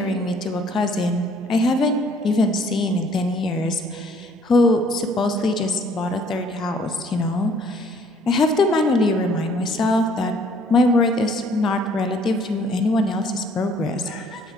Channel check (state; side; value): normal; both; correlation 0.60